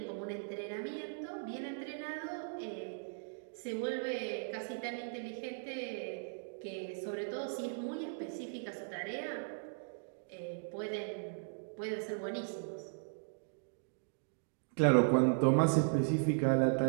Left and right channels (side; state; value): left; silent; digital silence